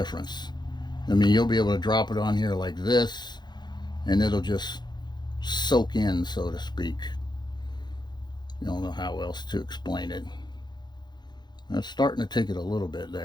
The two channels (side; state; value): right; late; 0.21 ms